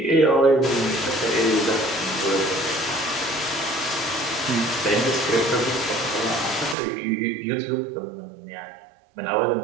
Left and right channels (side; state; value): left; drops out; at 6.8 s